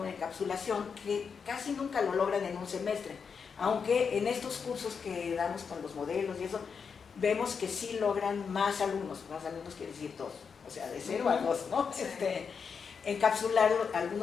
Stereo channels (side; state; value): right; quieter; 6.1 dB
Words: de encapsulación, que casi nunca lo logran en un semestre, aunque en estos cursos que damos con los modelos y eso, vemos que sí logran más alumnos quiere decir 2, o sea, de 0 a 2, ¿no? Encapsular